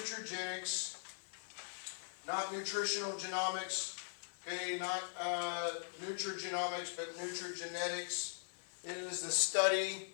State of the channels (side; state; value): right; silent; digital silence